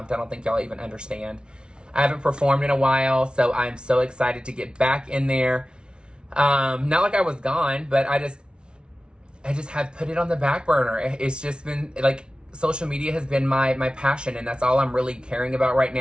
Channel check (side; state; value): left; late; 0.056 ms